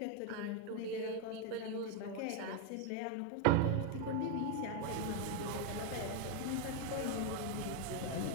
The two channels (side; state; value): both; different; correlation 0.01